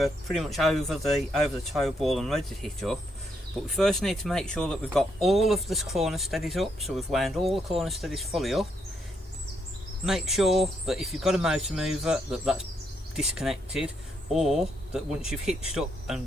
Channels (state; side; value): normal; both; correlation 0.77